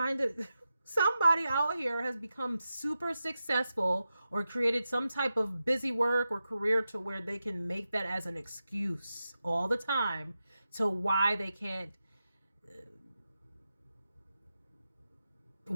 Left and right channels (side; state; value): both; inverted; correlation -0.90